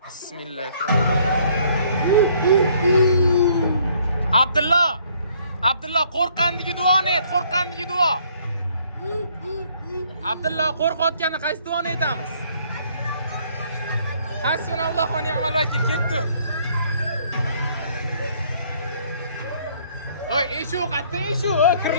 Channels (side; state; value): both; inverted; correlation -0.63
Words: Bismillahirrohmanirrohim. Abdulloh qo'rqqandagi duoni ayt, qo'rqqandagi duo. Abdulloh qo'rqayotganda qaysi duoni aytamiz? Hasbunallohu va ni'mal vakil, ketdi. Oy, eshu, qatta eshu,